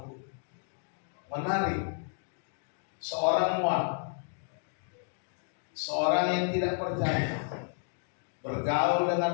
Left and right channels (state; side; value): silent; right; 57 dB below the other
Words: Menarik. Seorang Moab, seorang yang tidak percaya, bergaul